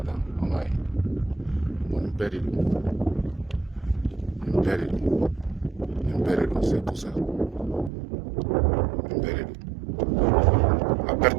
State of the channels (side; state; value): left; drops out; at 7.9 s